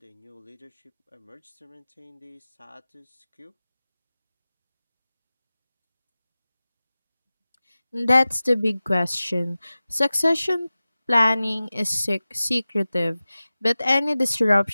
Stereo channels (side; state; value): both; inverted; correlation -0.96